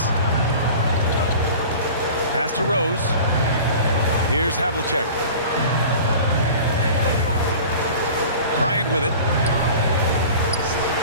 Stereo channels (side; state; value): both; inverted; correlation -0.40